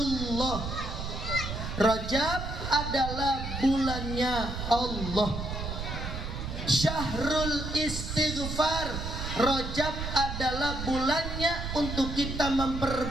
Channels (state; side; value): noise; right; rumble, 5 dB below the sound